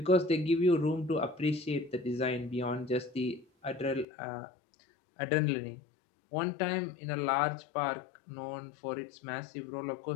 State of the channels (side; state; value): right; drops out; at 4.0 s